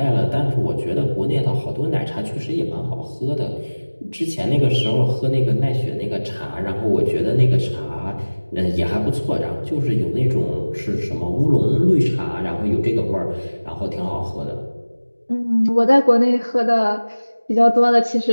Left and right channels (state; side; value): inverted; both; correlation -1.00